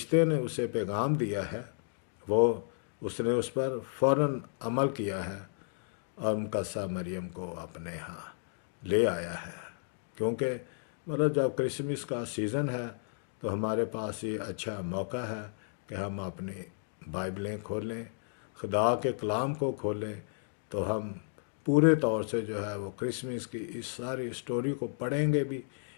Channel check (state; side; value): silent; right; digital silence